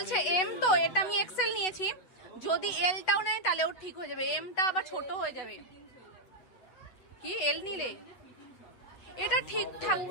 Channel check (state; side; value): late; right; 8.0 ms